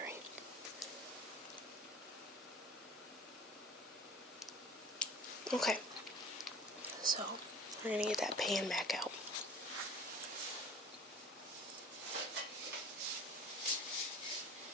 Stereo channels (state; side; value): normal; both; correlation 0.45